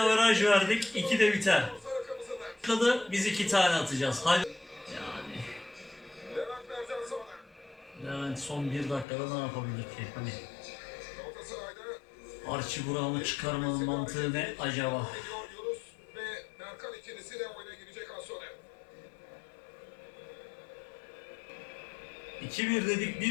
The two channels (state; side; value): drops out; right; at 9.1 s